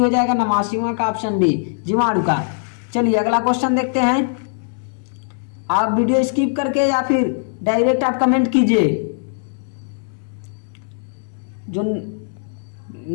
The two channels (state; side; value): silent; right; digital silence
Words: जाएगा, 89वां का ऑप्शन बी जीवाणु का। चलिए अगला क्वेश्चन देखते हैं। आप वीडियो स्किप करके या फिर डायरेक्ट आप कमेंट कीजिए। जो